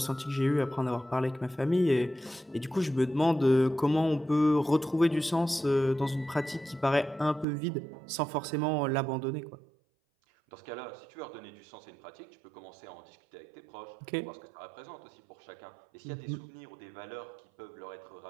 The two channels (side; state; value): left; drops out; at 7.5 s